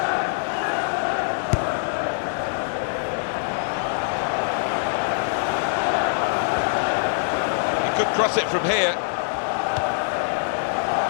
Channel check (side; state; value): right; silent; digital silence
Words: Could cross it from here.